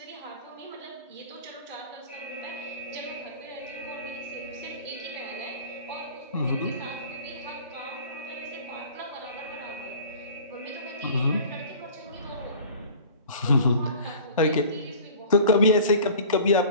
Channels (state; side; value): inverted; both; correlation -0.43